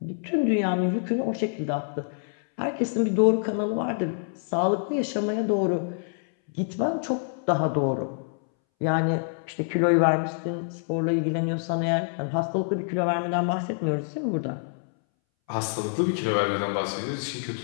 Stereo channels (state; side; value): silent; right; 61 dB below the other